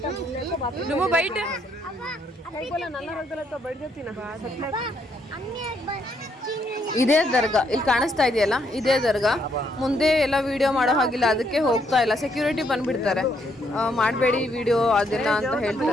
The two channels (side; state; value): both; normal; correlation 0.73